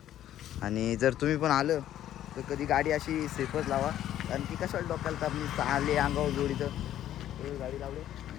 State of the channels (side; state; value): right; quieter; 12.0 dB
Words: आणि जर तुम्ही पण आलं तर कधी गाडी अशी सेफच लावा, कारण की कशाला डोक्याला तर मी आले अंगावर जोडीचं. गाडी लावली,